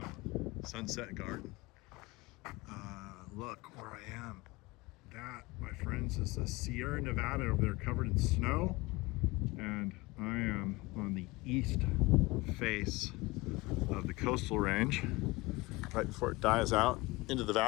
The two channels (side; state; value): right; quieter; 22.1 dB